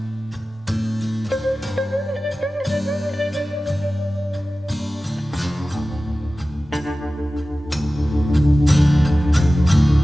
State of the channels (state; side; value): normal; both; correlation 0.96